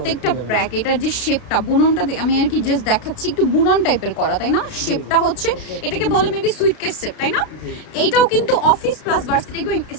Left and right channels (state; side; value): late; right; 32 ms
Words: ব্যাগ, এটার যে শেপটা, বুননটা আমি আর কি জাস্ট দেখাচ্ছি, একটু বুনন টাইপের করা, তাই না? শেপটা হচ্ছে এটাকে বলে মেবি সুইটকেস শেপ, তাই না? এইটাও কিন্তু অফিস প্লাস ভার্সিটি গোয়িং,